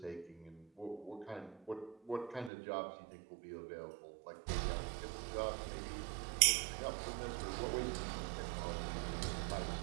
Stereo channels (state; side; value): drops out; left; at 2.5 s